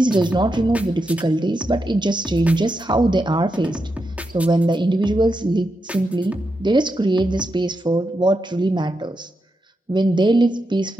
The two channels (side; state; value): both; normal; correlation 0.86